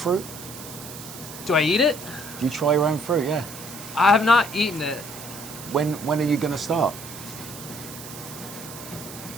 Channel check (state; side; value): noise; right; hiss, 13 dB below the sound